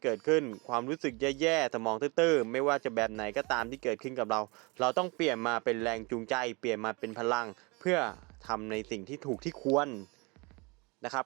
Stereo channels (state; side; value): quieter; left; 28.0 dB